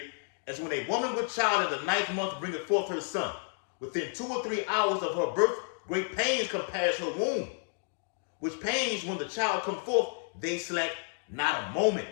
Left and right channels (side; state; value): right; silent; 57 dB below the other